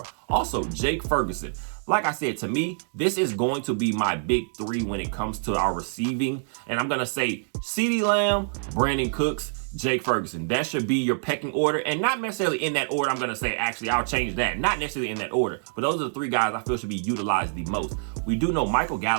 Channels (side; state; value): left; silent; digital silence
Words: Also, Jake Ferguson. Like I said, to me, this is going to be my big 3 when it comes to our receiving. And I'm going to say CeeDee Lamb, Brandon Cooks, Jake Ferguson. That should be your pecking order. And not necessarily in that order. I'm going to say, actually, I'll change that. Not necessarily in that order. But those are the 3 guys I feel should be utilized the most. We do know Michael